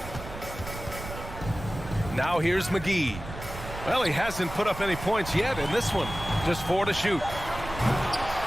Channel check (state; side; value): noise; right; rumble, 11 dB below the sound